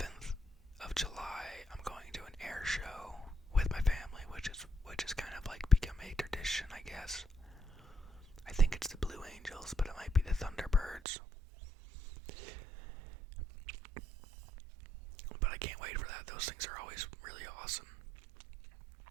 of July, I'm going to an air show with my family, which is kind of like become a tradition, I guess. I think it's the Blue Angels, but it might be the Thunderbirds. But I can't wait for that. Those things are always really awesome.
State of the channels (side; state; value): left; drops out; at 11.0 s